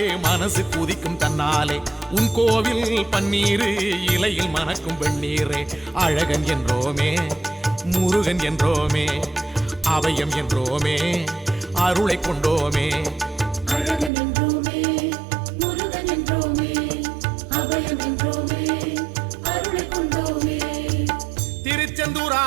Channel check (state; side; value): drops out; left; at 14.1 s